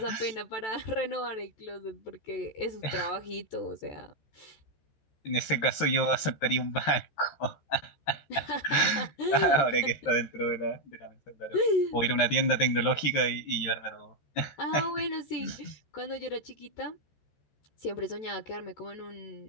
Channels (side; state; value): right; late; 14 ms